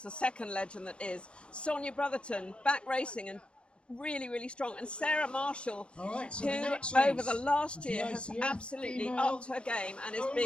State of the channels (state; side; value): late; right; 0.057 ms